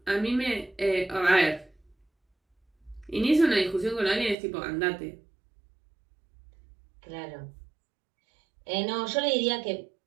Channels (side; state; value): left; drops out; at 4.4 s